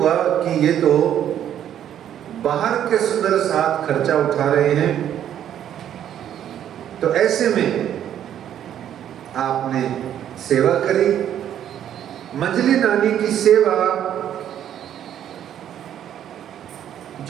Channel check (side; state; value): left; quieter; 10.4 dB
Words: कि ये तो बाहर के सुंदर साथ खर्चा उठा रहे हैं। तो ऐसे में आपने सेवा करी। मंझली नानी की सेवा